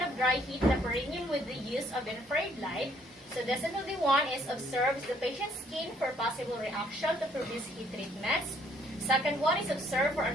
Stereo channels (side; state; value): both; normal; correlation 0.65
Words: of dry heat the perineum with the use of infrared light. So definitely one is observes the patient's skin for possible reaction to produce heat treatments. Second one is observe for